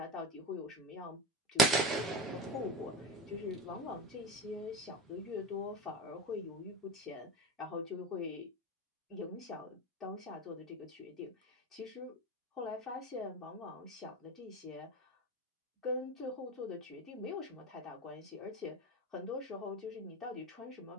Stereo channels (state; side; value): normal; both; correlation 0.25